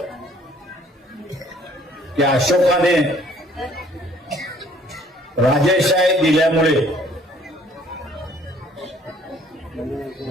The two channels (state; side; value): normal; both; correlation 0.59